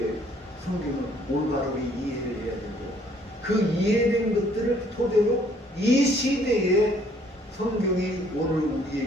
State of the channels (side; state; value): both; normal; correlation 0.62